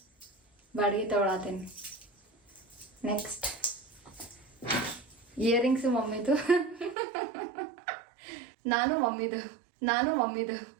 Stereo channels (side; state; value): left; drops out; at 7.0 s